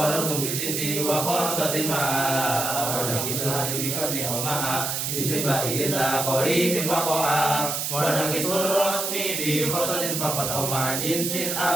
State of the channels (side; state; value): right; noise; hiss, 1 dB below the sound